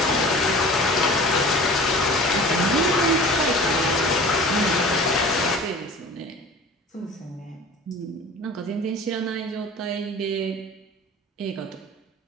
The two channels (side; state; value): both; normal; correlation 0.41